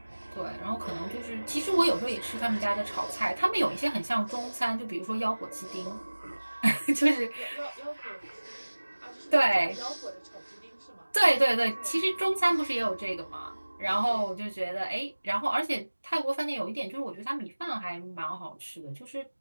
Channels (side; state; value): both; inverted; correlation -1.00